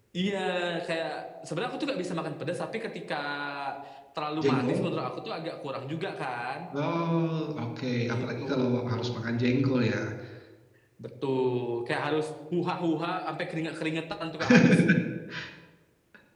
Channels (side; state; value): both; identical; correlation 1.00